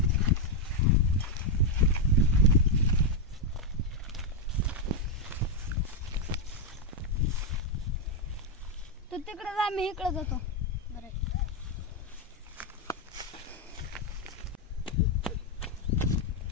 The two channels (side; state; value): both; normal; correlation 0.03